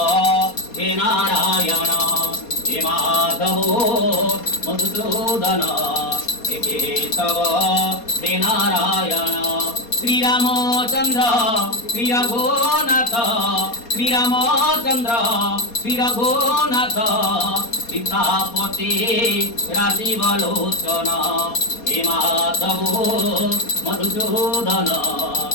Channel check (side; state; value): right; late; 4.2 ms